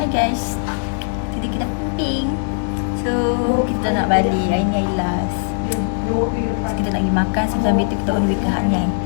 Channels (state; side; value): silent; right; digital silence